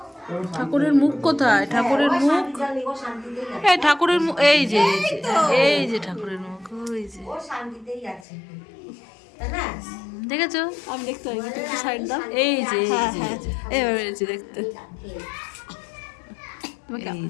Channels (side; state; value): right; drops out; at 8.2 s